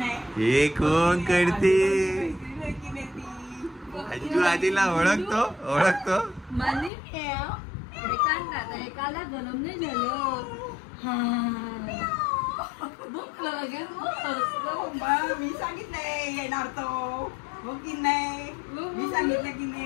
हे कोण करते? अज्जू आजीला ओळखतो ओळखतो. मनी एकाला गरम नाही झालं. मी सांगितलंय येणार तो. हो की नाही? मी सांगितलं की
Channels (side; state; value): right; drops out; at 6.9 s